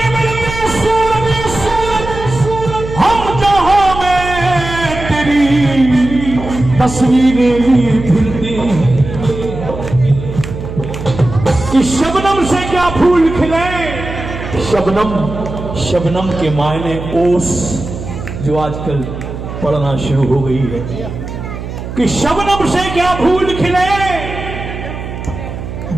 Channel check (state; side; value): noise; right; hum, 8 dB below the sound